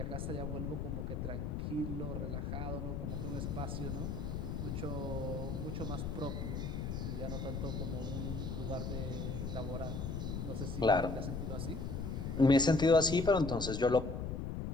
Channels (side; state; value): left; noise; rumble, 3 dB below the sound